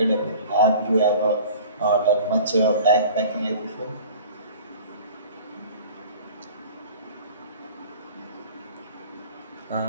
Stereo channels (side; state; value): both; inverted; correlation -0.44